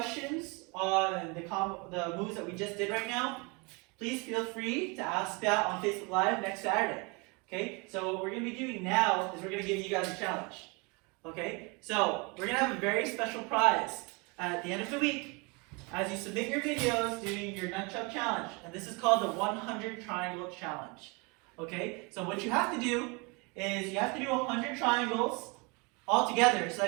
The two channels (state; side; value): quieter; left; 29.4 dB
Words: on the moves that we just did right now, please feel free to ask that on Facebook Live next Saturday. Okay. So what we're going to be doing now is we're going to give you guys a challenge. Okay. So we're going to have a very special prize at the end of the week. as you submit your videos doing your Nunchuck challenge. And this is called the 100 triangle challenge. Okay, so what you have to do is you have to do 100 triangles all together. So